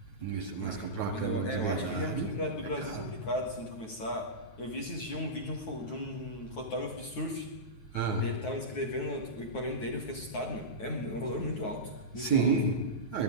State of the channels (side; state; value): right; late; 9.3 ms